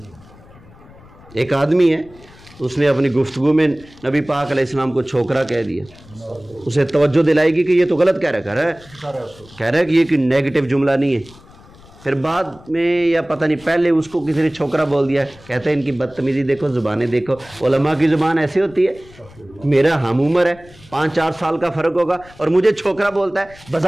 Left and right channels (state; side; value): noise; left; rumble, 24 dB below the sound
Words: ایک آدمی ہے، اس نے اپنی گفتگو میں نبی پاک علیہ السلام کو چھوکرا کہہ دیا، اسے توجہ دلائے گی کہ یہ تو غلط کہہ رہا ہے کہ یہ کوئی نیگیٹو جملہ نہیں ہے۔ پھر بعد میں یا پتہ نہیں پہلے اس کو کسی نے چھوکرا بول دیا، کہتے ہیں ان کی بدتمیزی دیکھو، زبانیں دیکھو۔ علماء کی زبان ایسی ہوتی ہے، میرا ہم عمر ہے، 5-4 سال کا فرق ہوگا اور مجھے چھوکرا بولتا ہے،